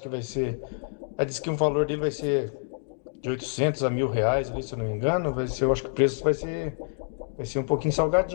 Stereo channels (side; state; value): right; silent; digital silence